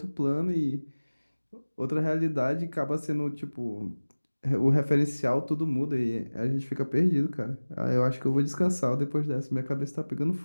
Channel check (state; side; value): inverted; both; correlation -1.00